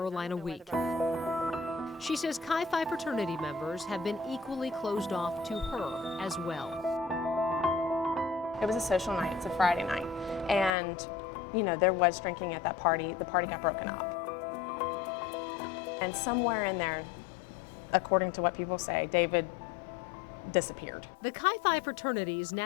Week. She says Chi Phi fraternity members have been equally closed off to her as well. It was a social night, it's a Friday night, and you know, there was drinking at that party. The party got broken up. And somewhere in there, according to what people say, David disappeared. The Chi Phi fraternity's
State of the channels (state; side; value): drops out; right; at 10.7 s